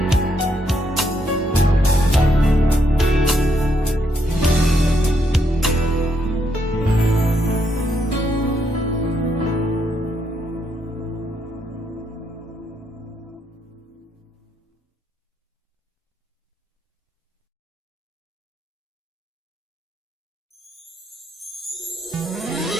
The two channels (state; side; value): normal; both; correlation 0.76